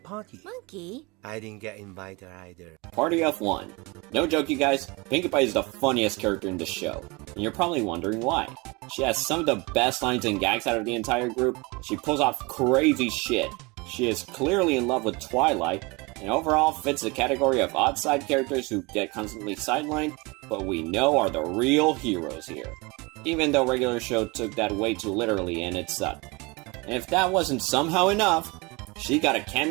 party. Monkey? I didn't get invited either. Party of 1. No joke, you guys, Pinkie Pie is the funniest character in the show. And you're probably wondering why. She has some of the best lines and gags out of the entire group. She pulls off crazy shit. She is clearly in love with Twilight, and overall fits the category of odd side characters who get constantly sidelined, but we know are the real heroes here. Even though regular show took that way too literally and it sucked. And if that wasn't somehow enough, she got a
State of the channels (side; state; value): left; quieter; 26.1 dB